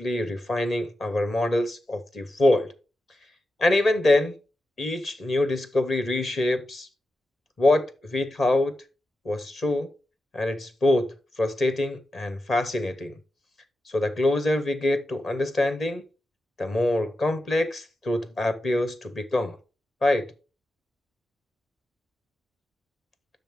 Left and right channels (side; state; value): both; normal; correlation 0.90